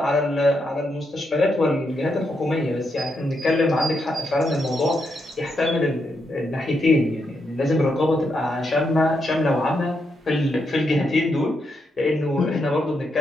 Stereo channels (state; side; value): normal; both; correlation 0.81